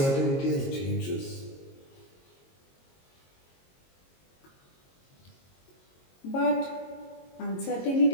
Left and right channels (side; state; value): right; late; 22 ms